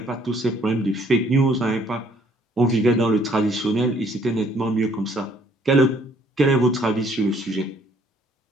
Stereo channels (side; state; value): both; normal; correlation 0.63